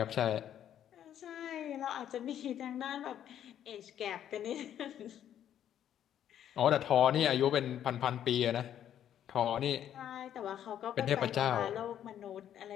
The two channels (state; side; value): quieter; right; 10.3 dB